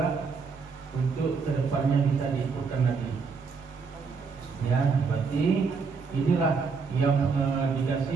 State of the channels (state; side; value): quieter; left; 5.0 dB